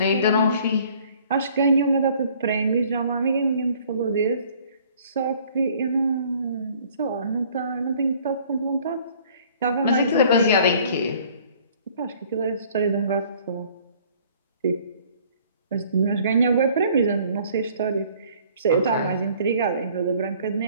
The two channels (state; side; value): inverted; both; correlation -0.56